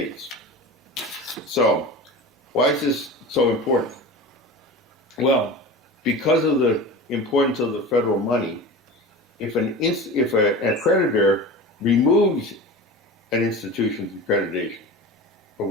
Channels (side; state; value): both; normal; correlation 0.32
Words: So, why is this so important? Well, because of the importance of the federal money, if an accreditor removes an institution's accreditation for